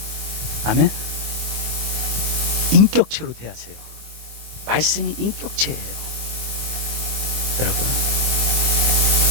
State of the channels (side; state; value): left; late; 24 ms